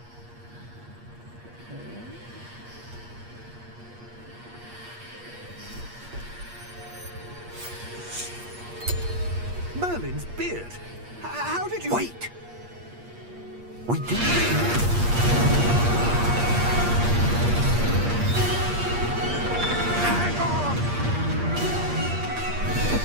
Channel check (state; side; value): late; left; 8.5 ms